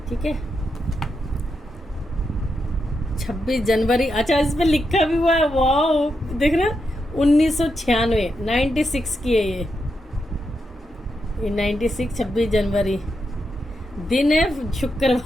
ठीक है। 26 जनवरी, अच्छा इस पे लिखा भी हुआ है, वाह देख रहे 1996 96 की है ये 96 26 जनवरी दिन है,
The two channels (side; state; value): both; normal; correlation 0.84